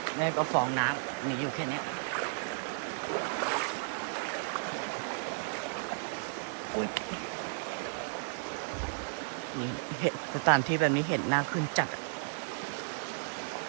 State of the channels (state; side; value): silent; left; digital silence